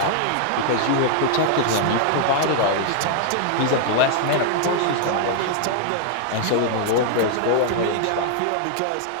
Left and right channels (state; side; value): different; both; correlation 0.00